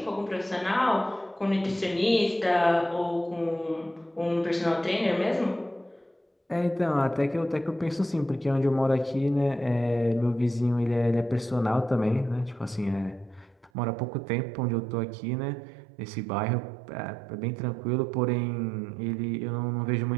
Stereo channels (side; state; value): left; drops out; at 13.7 s